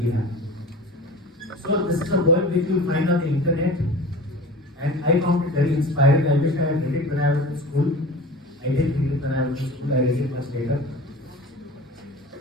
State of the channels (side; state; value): both; normal; correlation 0.37